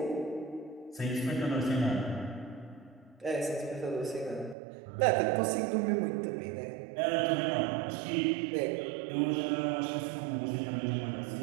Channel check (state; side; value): drops out; left; at 4.5 s